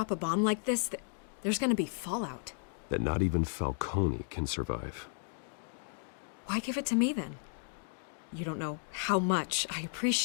a bomb like this, there's gonna be fallout. That not even Falcone can survive. Why give it to me then? You don't know how much I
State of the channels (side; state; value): right; silent; 55 dB below the other